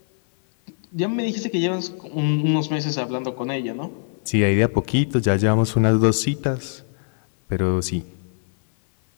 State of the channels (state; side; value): silent; right; 57 dB below the other